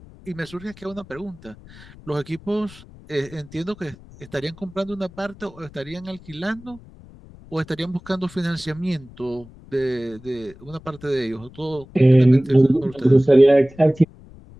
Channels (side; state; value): left; noise; rumble, 21 dB below the sound